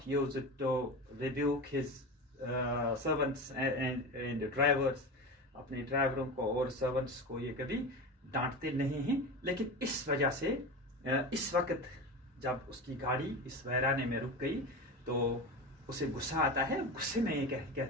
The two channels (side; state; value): both; normal; correlation 0.26